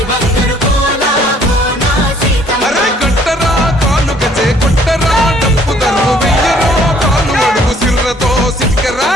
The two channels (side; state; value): both; normal; correlation 0.61